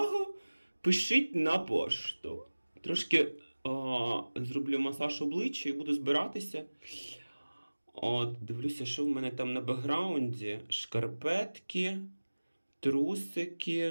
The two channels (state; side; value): inverted; both; correlation -1.00